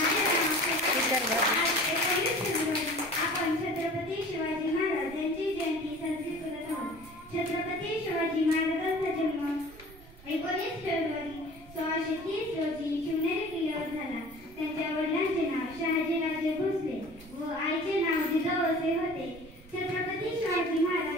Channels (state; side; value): noise; right; rumble, 21 dB below the sound